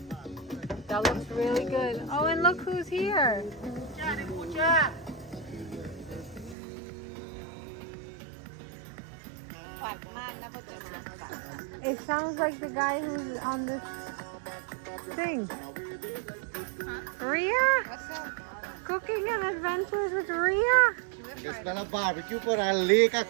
That looks really good. Oh, and look who's here. It sounds like the guy who's on this thing. Ria? What's up? Cooking and adventures with Ria? It's been a barbecue for a lake a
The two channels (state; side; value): drops out; left; at 6.6 s